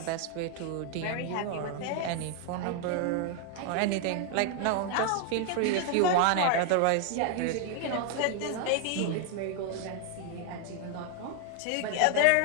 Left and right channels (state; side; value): different; both; correlation 0.01